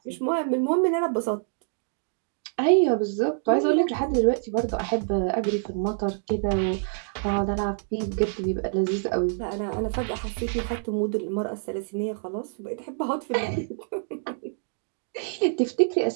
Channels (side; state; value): left; silent; digital silence